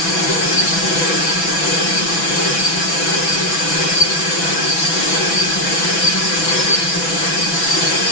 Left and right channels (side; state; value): right; late; 6.0 ms